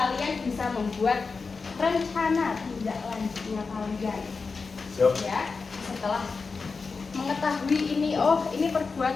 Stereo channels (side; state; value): right; quieter; 4.6 dB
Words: bisa membuat rencana tindak lanjutnya kalian. Ya, setelah mengetahui ini, oh ini